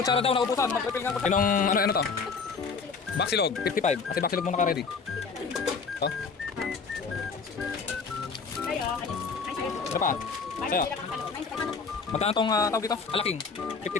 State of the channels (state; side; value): quieter; right; 5.1 dB